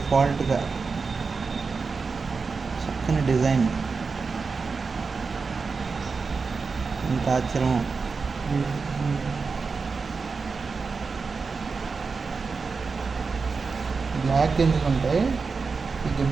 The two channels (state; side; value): quieter; left; 4.7 dB